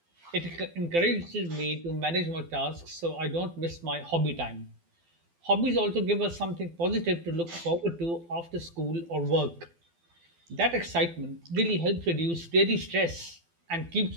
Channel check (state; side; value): late; left; 12 ms